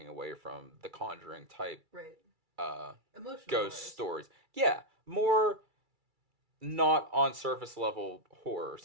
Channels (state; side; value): late; left; 2.3 ms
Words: away from the Conjuring type, right? Emotional ghost stories. Yeah, more not on surface level horror,